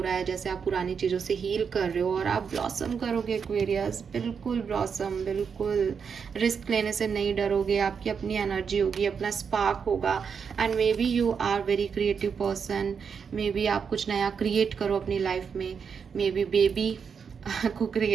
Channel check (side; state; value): left; quieter; 6.4 dB